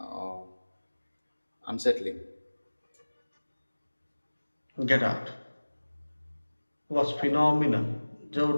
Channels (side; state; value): both; inverted; correlation -1.00